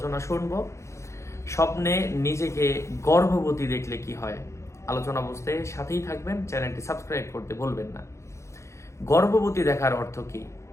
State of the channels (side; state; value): right; late; 0.14 ms